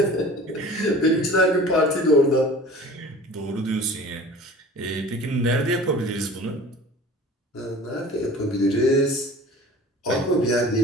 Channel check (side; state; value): both; normal; correlation 0.42